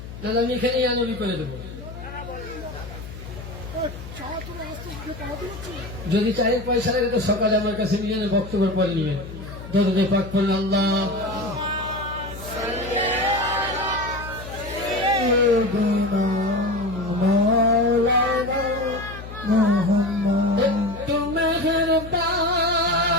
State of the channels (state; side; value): noise; left; hum, 12 dB below the sound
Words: না আমি এখানেই আনবি করে দেবো। যদি চায়ের পয়সা লাগে তো সকালে আমার কাছে নিয়ে বক্তব্য পরে নিবেন। দরুদে পাক পড়ুন আল্লাহ। একটু মেহেরবানি